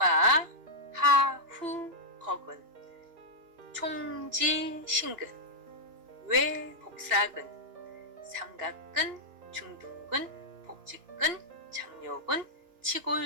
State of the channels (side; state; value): left; late; 2.9 ms